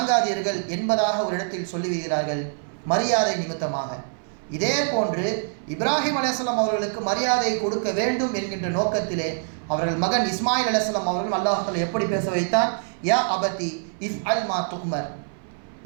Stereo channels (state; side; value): silent; left; 59 dB below the other